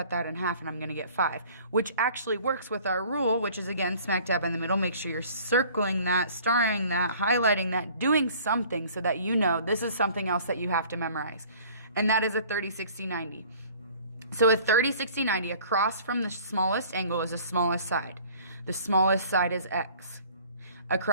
that in half and I'm going to get 5, which actually works with our rule, which is again smack dab in the middle. Make sure you're circling that, starring that, highlighting that, doing something so that you know this is something else that you have to memorize. And that is a 30, 60, 90. So a 30, 60, 90 across from the smallest angle is the smallest side. The smallest side is x.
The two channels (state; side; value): inverted; both; correlation -0.51